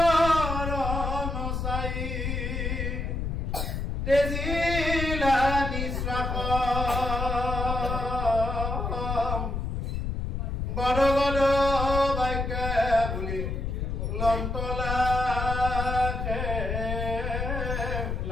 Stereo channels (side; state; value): left; noise; rumble, 2 dB below the sound